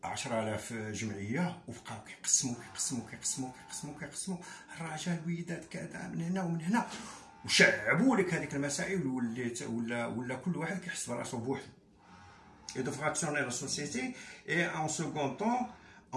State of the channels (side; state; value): both; identical; correlation 1.00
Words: 10,000 جمعيه، وبقاو كيقسموا الرجال الوليدات كذا من هنا ومن هنا، وشعبوا لك هذيك المسائل، ولا كل واحد كيحس براسو بوحدو. Et de fractionner la société, et en second temps